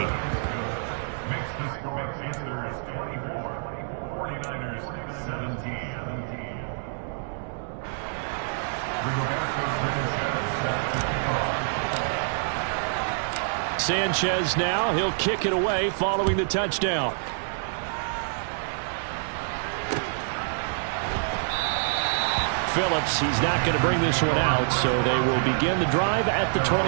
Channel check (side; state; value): left; silent; digital silence